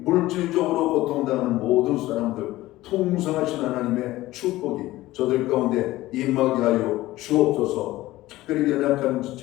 고통당하는 모든 사람들 풍성하신 하나님의 축복이 저들 가운데 임하게 하여 주옵소서. 특별히 연약한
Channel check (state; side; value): quieter; right; 17.0 dB